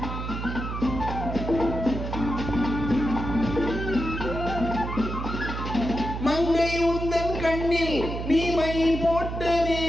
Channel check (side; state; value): right; noise; hum, 5 dB below the sound